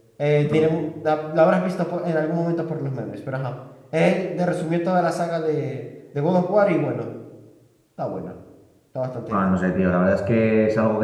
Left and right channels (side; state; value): both; identical; correlation 1.00